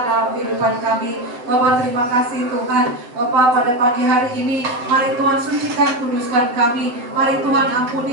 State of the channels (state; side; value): late; left; 8.0 ms